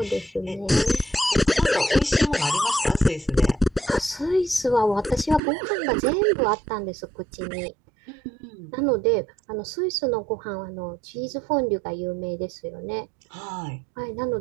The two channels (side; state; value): left; drops out; at 5.4 s